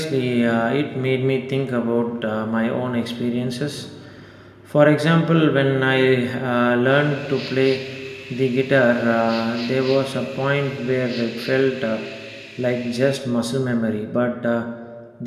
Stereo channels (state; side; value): identical; both; correlation 1.00